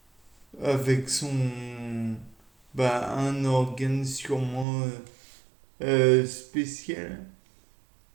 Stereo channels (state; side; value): drops out; left; at 4.7 s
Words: avec un organe sûrement spécial,